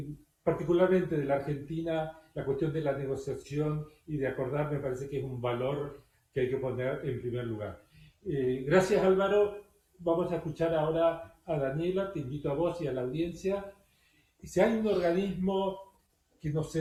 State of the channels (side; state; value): both; identical; correlation 1.00